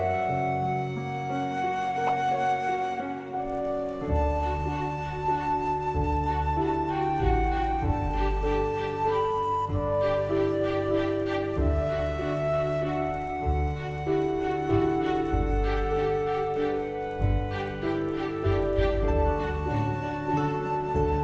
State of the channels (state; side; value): identical; both; correlation 1.00